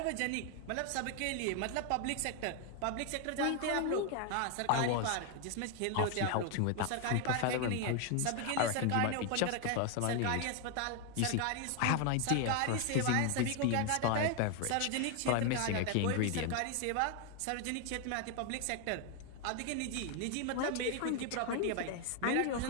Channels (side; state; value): both; different; correlation 0.01